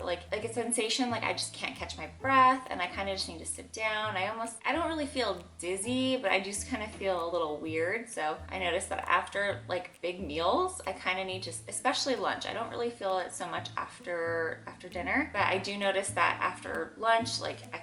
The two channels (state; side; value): identical; both; correlation 1.00